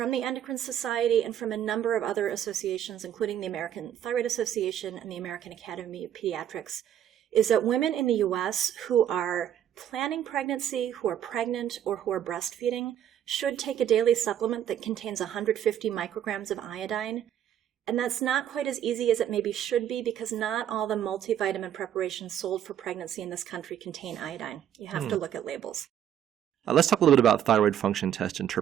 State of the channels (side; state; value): left; quieter; 10.2 dB